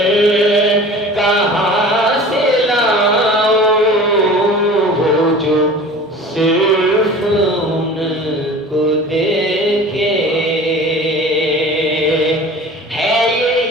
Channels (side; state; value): both; normal; correlation 0.41